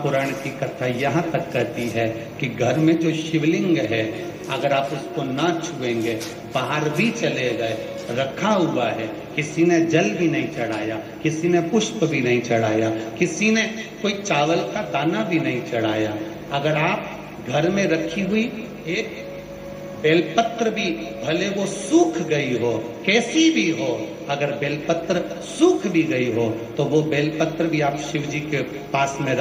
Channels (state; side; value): identical; both; correlation 1.00